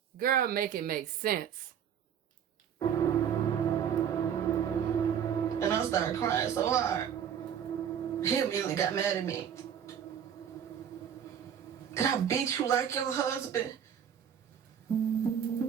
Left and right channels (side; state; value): left; quieter; 8.6 dB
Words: Girl, make it make sense. And I started crying so hard. He immediately got mad at me. Did I beat you like your husband?